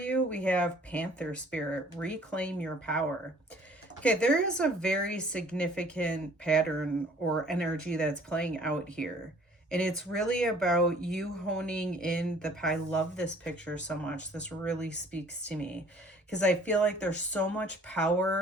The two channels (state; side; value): normal; both; correlation 0.54